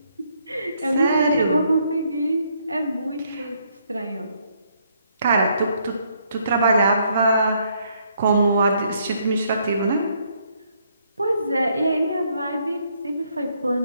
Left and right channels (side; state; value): both; inverted; correlation -0.71